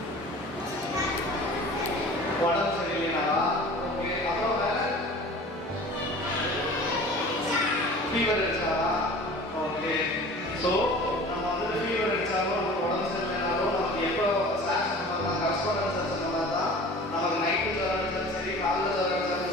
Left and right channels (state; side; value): normal; both; correlation 0.42